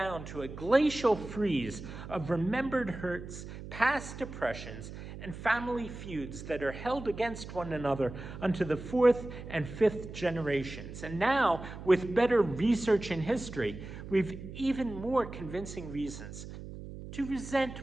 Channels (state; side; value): noise; right; hum, 11 dB below the sound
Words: to a glacial freeze of remembered hurts, past oppressions, and family feuds that are held against one another unto the fourth and fifth generations. And now, with better research in history, we've even more convincing reasons to